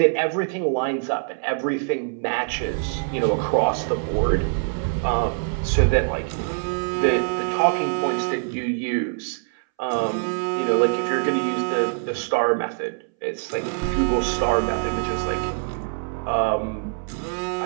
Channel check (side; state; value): left; silent; 62 dB below the other